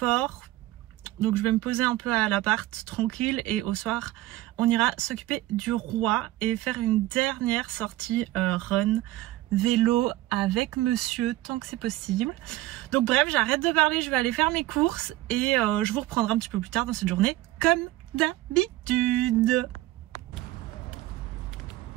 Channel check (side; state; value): left; quieter; 16.7 dB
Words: donc je vais me poser un peu à l'appart tranquille, et au soir on ira s'occuper du roi et faire une dernière sortie run vélo avec monsieur tant que c'est possible. Donc bref, j'arrête de parler, je vais aller faire mes courses et je vous reprendrai un petit peu plus tard dans cette journée comme d'habitude.